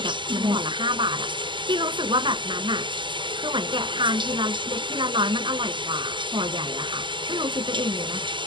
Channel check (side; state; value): left; late; 0.23 ms